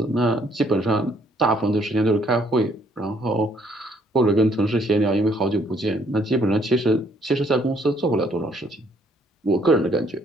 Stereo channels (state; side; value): normal; both; correlation 0.66